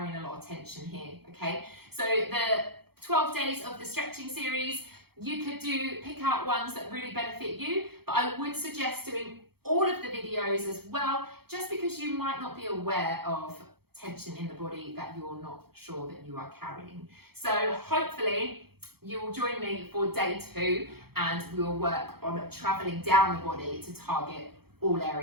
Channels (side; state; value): left; late; 0.96 ms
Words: a lot of tension here, okay? So the 12 days of the stretching series, you could pick out ones that really benefit you, but I would suggest doing all of the videos as well, just because you might not be aware of tension in the body that you're not sure that you are carrying. So hopefully you will join me for day 2, and we will work on traveling down the body to target all